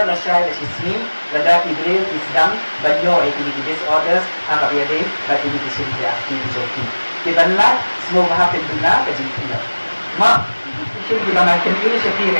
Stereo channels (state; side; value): inverted; both; correlation -1.00